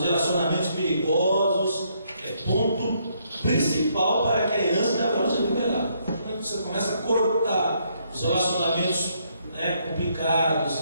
relacionamentos perigosos, é ponto principal para que a herança de Abraão seja liberada. Quando você começa a cortar os relacionamentos complicados,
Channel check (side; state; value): both; inverted; correlation -0.72